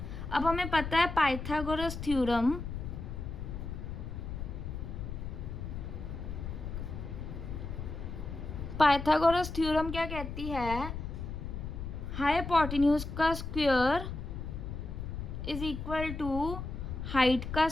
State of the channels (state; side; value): noise; left; rumble, 6 dB below the sound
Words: अब हमें पता है पाइथागोरस थ्योरम, पाइथागोरस थ्योरम क्या कहती है? हाइपोटेन्यूज का square is equal to height का